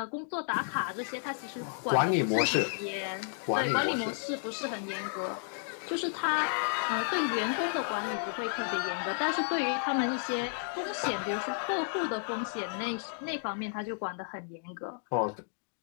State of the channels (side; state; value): right; silent; digital silence